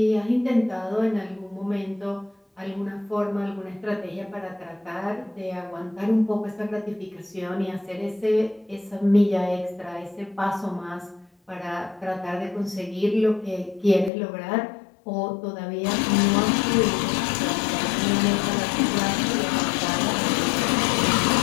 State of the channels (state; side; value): drops out; right; at 14.1 s